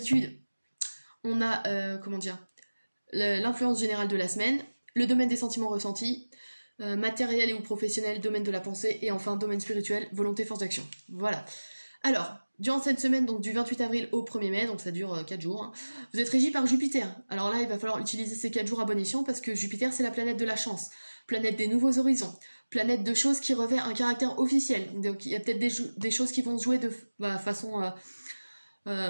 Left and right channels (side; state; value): both; inverted; correlation -1.00